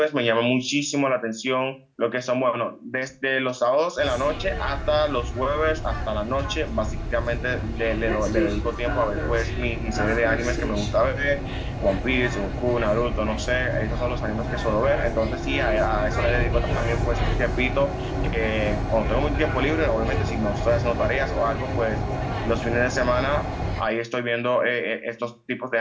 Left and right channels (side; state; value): both; identical; correlation 1.00